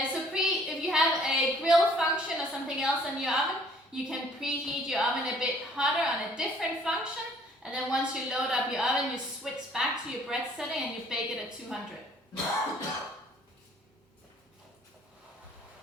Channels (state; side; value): normal; both; correlation 0.58